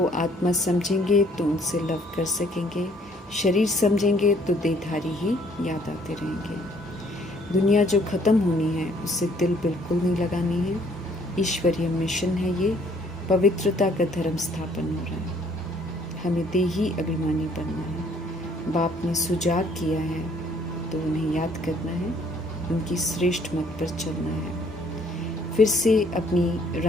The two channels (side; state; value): both; normal; correlation 0.62